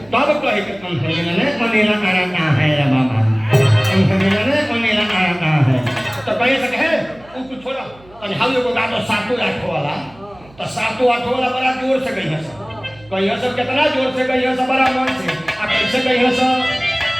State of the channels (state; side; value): noise; right; hum, 26 dB below the sound